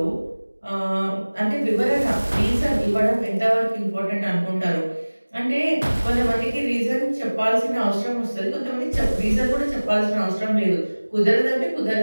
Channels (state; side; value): inverted; both; correlation -1.00